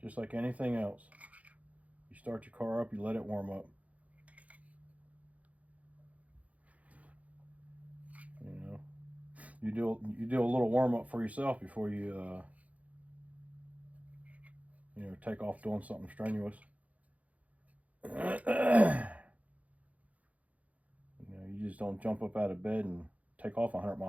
like anything else. You start your car up, you let it warm up. You know, you do a little warm up for yourself before you you know, take off doing something strenuous. You know, you just don't jump up out of bed and take off 100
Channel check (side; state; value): left; late; 0.069 ms